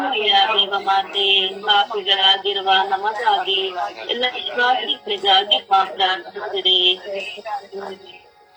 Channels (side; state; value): both; identical; correlation 1.00